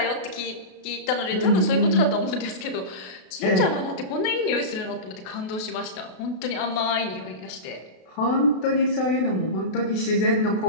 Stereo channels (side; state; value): right; late; 32 ms